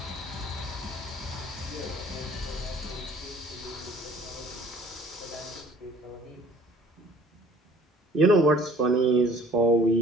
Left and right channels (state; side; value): normal; both; correlation 0.53